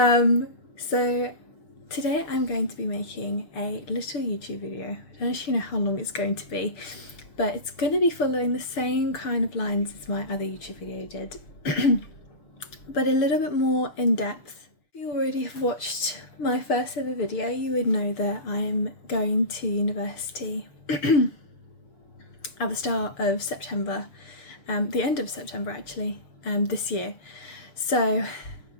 today I'm going to be making a little YouTube video. I don't actually know how long it's going to be, but it's going to be following the same kind of lines as my other YouTube video did, but a little bit more in depth. If you already have watched my first ever video, you would know that I'm going to university at the start of September, the end of September actually, this year. So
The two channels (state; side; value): late; right; 6.8 ms